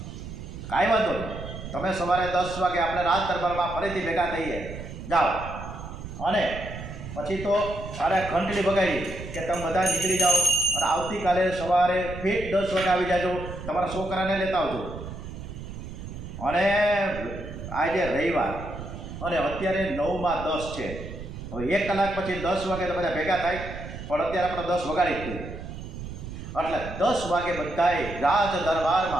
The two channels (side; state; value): right; noise; rumble, 10 dB below the sound